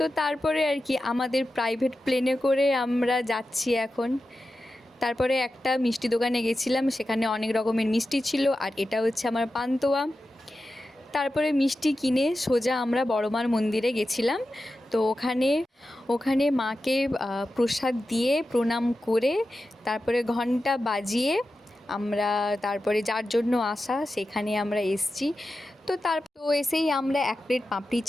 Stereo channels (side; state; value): both; normal; correlation 0.92